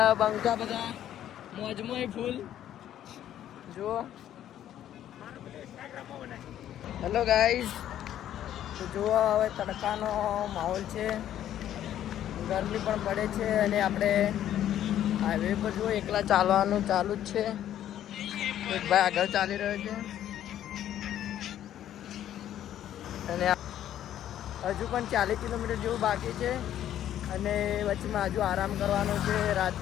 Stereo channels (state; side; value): quieter; right; 11.4 dB